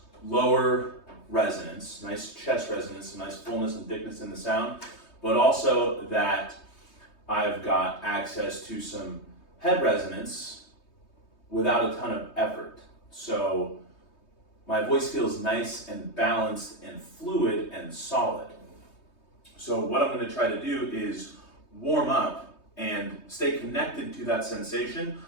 lower resonance, nice chest resonance, nice fullness and thickness in the sound, but also that I've got access to some head resonance without a ton of effort. So my voice feels nice and balanced and fluid and solid. So what I'm going to try to do is warm up and stay connected to that sensation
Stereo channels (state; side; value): late; right; 3.2 ms